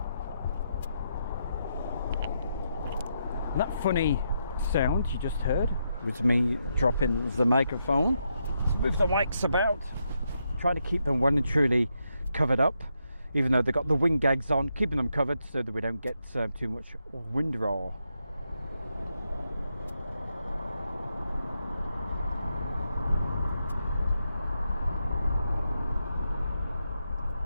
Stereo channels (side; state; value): both; inverted; correlation -0.81